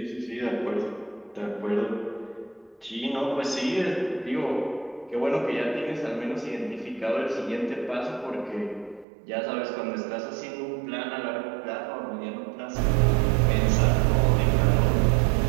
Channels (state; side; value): drops out; left; at 9.1 s